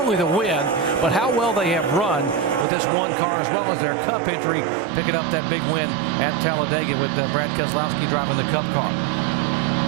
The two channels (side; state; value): left; drops out; at 2.7 s